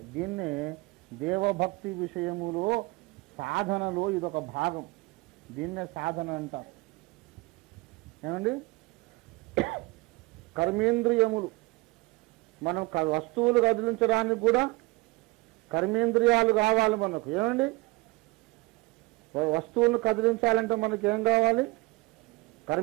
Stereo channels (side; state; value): left; quieter; 23.4 dB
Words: దీన్నే దేవభక్తి విషయములో సాధనలో ఇదొక భాగం. దీన్నే సాధన అంటారు. ఏమండి? కర్మేంద్రియములు, మనం వస్తువులు కదిలించడానికి కూడా కర్మేంద్రియాలు కావాలి మనకు. ఏమండి? వస్తువులను కదిలించాలంటే మనకి ఏం కావాలి?